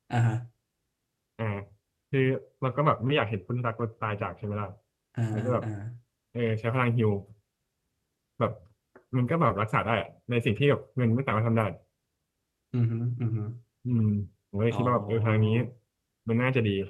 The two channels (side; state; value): both; identical; correlation 1.00